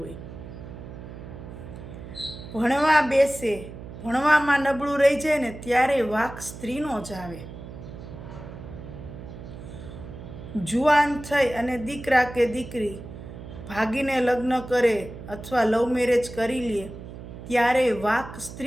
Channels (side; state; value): right; noise; hum, 13 dB below the sound